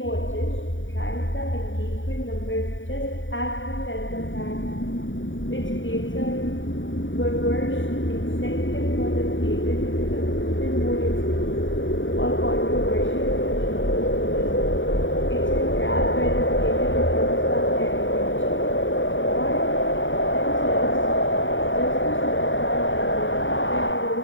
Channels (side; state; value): right; late; 0.56 ms